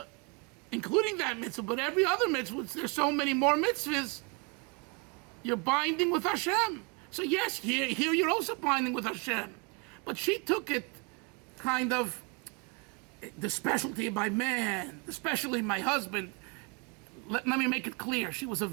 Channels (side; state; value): left; quieter; 31.2 dB